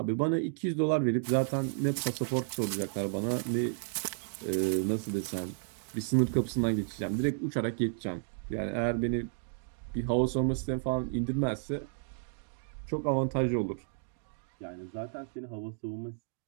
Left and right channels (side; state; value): left; silent; digital silence